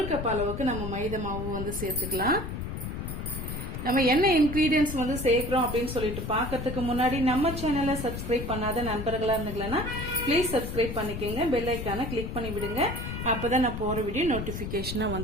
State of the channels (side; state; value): left; noise; rumble, 6 dB below the sound